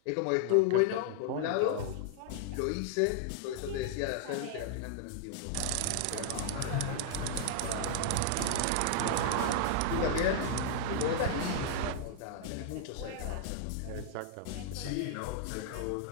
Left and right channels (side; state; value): both; different; correlation -0.01